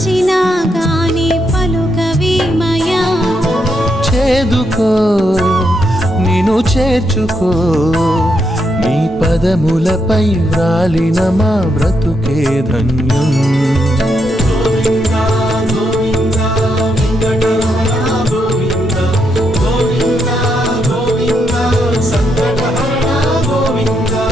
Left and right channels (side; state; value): both; normal; correlation 0.80